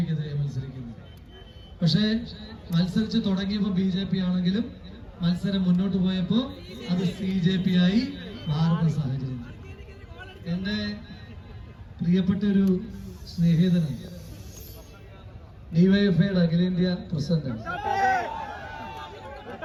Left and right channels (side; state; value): both; identical; correlation 1.00